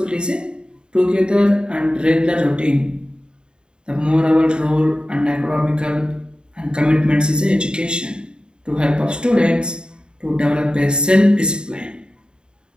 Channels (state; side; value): late; left; 0.049 ms